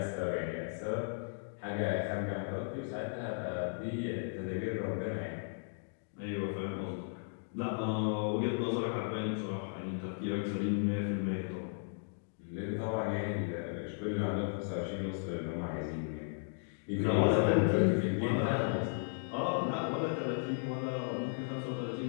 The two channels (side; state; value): right; silent; digital silence